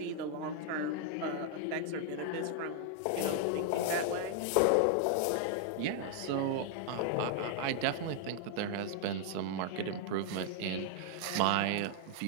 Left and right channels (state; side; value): different; both; correlation 0.00